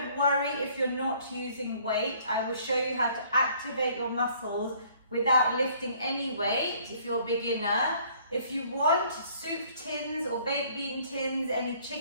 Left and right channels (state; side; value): inverted; both; correlation -0.59